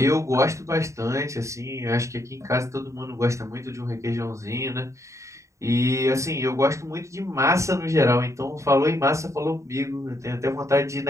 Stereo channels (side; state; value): left; late; 0.15 ms